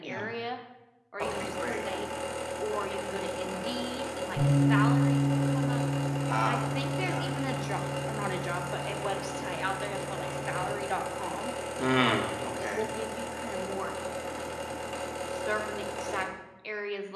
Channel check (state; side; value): identical; both; correlation 1.00